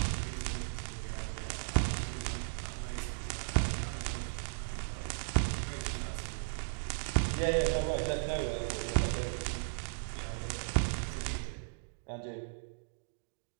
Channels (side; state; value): left; silent; digital silence